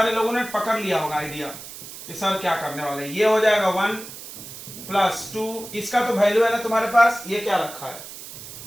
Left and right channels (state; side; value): noise; right; hiss, 13 dB below the sound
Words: लोगों ने पकड़ लिया होगा आइडिया कि सर क्या करने वाले। ये हो जाएगा 1 प्लस 2, इसका तो वैल्यू है ना तुम्हारे पास, ये क्या रखा है